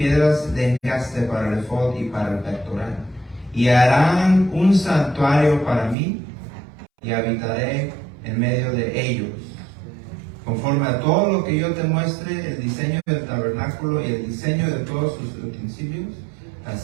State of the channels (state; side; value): drops out; left; at 6.0 s